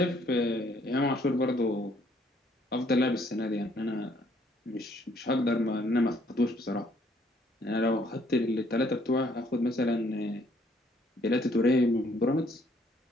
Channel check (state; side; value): normal; both; correlation 0.65